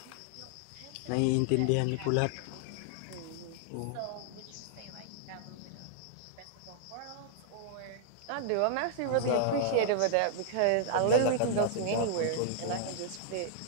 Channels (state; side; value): different; both; correlation -0.01